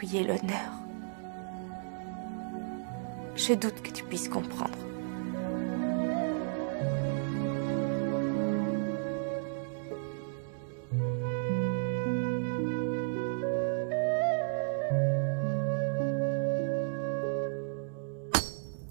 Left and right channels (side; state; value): left; silent; digital silence